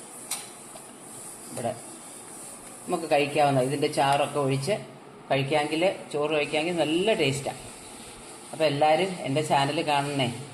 ഇവിടെ നമുക്ക് കഴിക്കാവുന്ന ഇതിൻ്റെ ചാറൊക്കെ ഒഴിച്ച് കഴിക്കാമെങ്കിൽ, ചോറ് കഴിക്കാമെങ്കിൽ നല്ല ടേസ്റ്റാണ്. അപ്പോൾ എല്ലാവരും എൻ്റെ ചാനൽ കാണണേ,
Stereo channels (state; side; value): identical; both; correlation 1.00